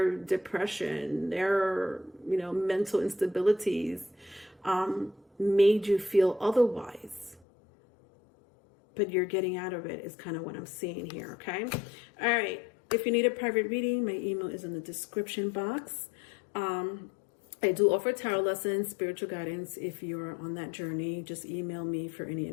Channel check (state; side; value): drops out; right; at 7.5 s